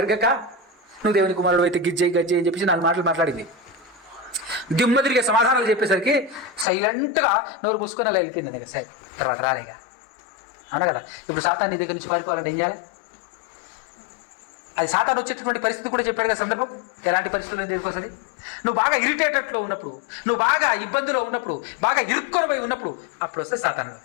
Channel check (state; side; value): drops out; right; at 6.7 s